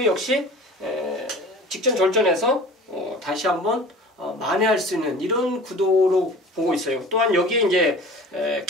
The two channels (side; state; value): both; normal; correlation 0.41